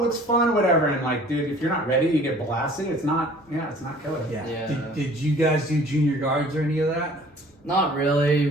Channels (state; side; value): normal; both; correlation 0.51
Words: looks fun, whatever. And like, dude, if you're not ready, you get blasted. It's not killer. Yeah. Yeah. Did you guys do junior guards or any of that? not really.